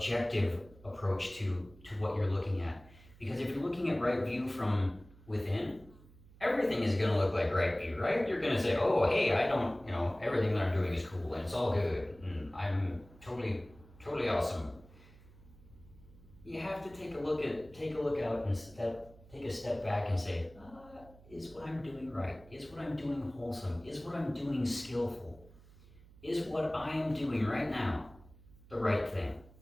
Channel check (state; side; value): noise; right; hum, 23 dB below the sound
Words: approach to what you're looking at. Because if you're looking at right view from within, everything is going to look like right view, right? You're going to say, oh, hey, everything that I'm doing is cool and it's all good and I'm totally awesome. You have to take a look out and take a step back and say, is what I'm doing right? Is what I'm doing wholesome? Is what I'm doing skillful? Is what I am doing right now the right thing?